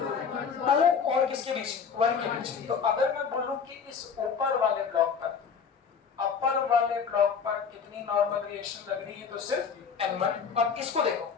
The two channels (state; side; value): quieter; right; 6.3 dB